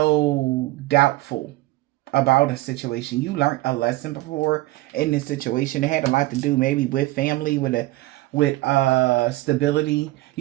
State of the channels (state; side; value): quieter; left; 18.6 dB